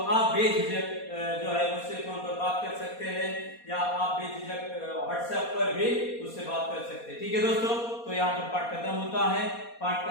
बेझिझक जो है मुझसे फोन पर बात कर सकते हैं या आप बेझिझक व्हाट्सएप पर भी मुझसे बात कर सकते हैं। ठीक है दोस्तों, तो यहाँ पर पाठ खत्म होता है। पाठ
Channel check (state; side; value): late; right; 4.2 ms